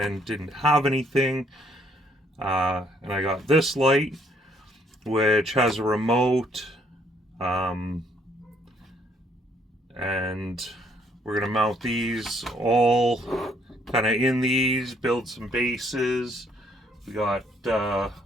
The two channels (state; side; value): normal; both; correlation 0.67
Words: didn't have anything. And I got this light, which has a remote, and we're gonna mount these all kind of in these, build some bases. We got a